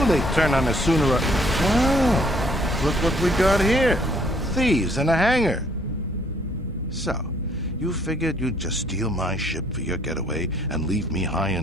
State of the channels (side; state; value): both; normal; correlation 0.64